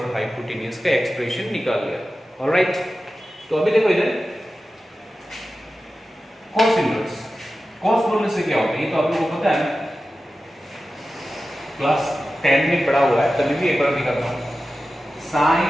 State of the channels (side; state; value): both; normal; correlation 0.94